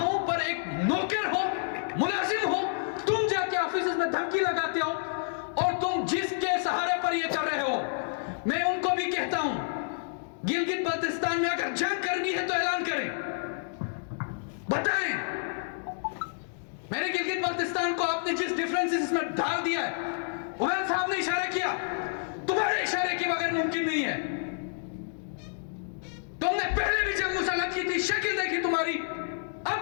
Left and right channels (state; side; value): silent; right; digital silence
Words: پر ایک نوکر ہو، ملازم ہو، تم جا کے آفیسز میں دھمکی لگاتے ہو، اور تم جس کے سہارے پر یہ کر رہے ہو، میں ان کو بھی کہتا ہوں گلگت بلتستان میں اگر جنگ کرنی ہے تو اعلان کریں، بتائیں۔ میرے گلگت بلتستان کو آپ نے جس ڈیفرنسز میں ڈال دیا ہے، عمر صاحب نے اشارہ کیا، تمہارے اشارے کے بغیر ممکن نہیں ہے۔ تم نے پہلے بھی جنگ مسلط کی تھی، شکل دیکھی تمہاری،